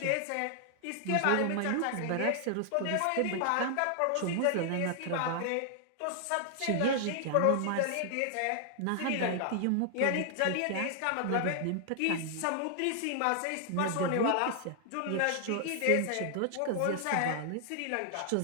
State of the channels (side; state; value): both; different; correlation 0.00